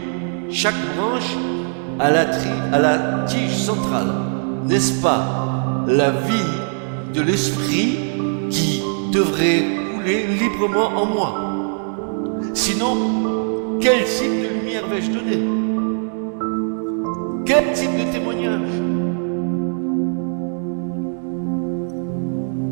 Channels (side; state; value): left; silent; 58 dB below the other